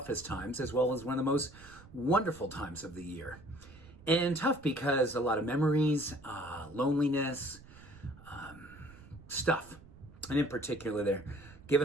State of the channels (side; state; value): right; noise; rumble, 20 dB below the sound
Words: times as well as one of the most wonderful times of the year. And tough because a lot of memories, loneliness, stuff. And in particular there,